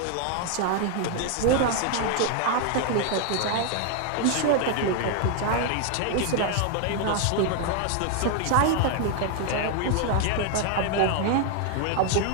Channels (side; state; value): both; different; correlation 0.00